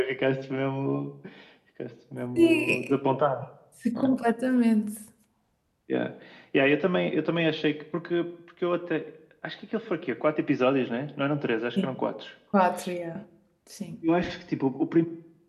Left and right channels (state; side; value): identical; both; correlation 1.00